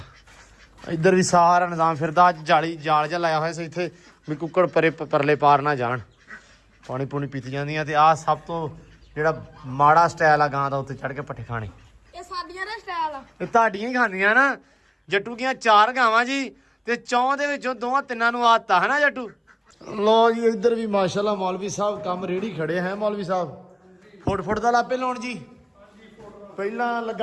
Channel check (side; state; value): both; identical; correlation 1.00